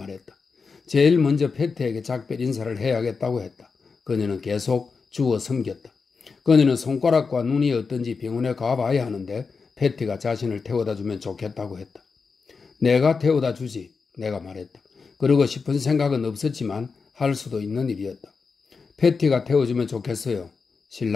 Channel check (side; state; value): right; quieter; 5.0 dB